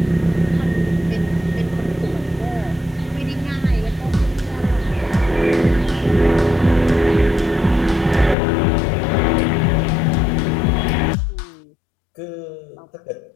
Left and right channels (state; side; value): drops out; right; at 8.3 s